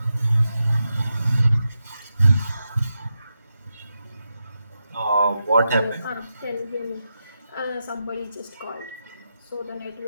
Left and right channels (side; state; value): both; inverted; correlation -0.88